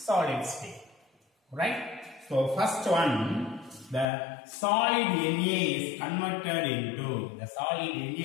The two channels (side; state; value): right; drops out; at 4.0 s